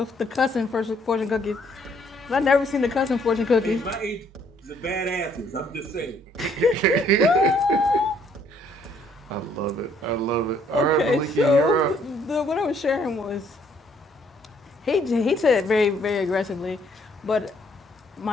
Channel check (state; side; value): normal; both; correlation 0.65